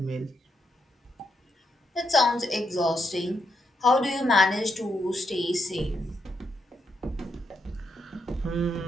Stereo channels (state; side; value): normal; both; correlation 0.81